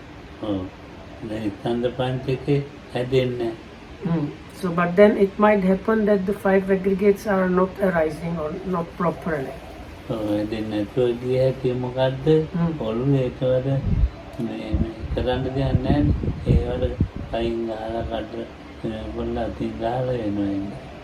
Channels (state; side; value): identical; both; correlation 1.00